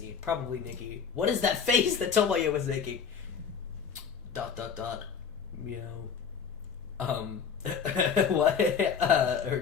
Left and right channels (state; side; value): quieter; right; 6.7 dB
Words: Probably Nikki. What is that face that Tomoyo was making? ... Meow. What?